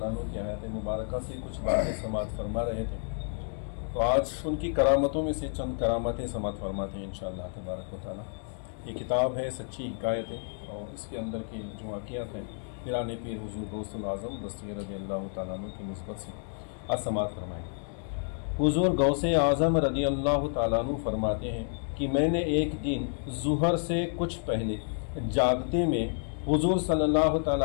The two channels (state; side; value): silent; right; 58 dB below the other